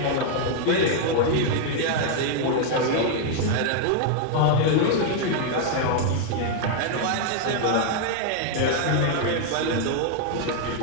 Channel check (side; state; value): both; different; correlation 0.00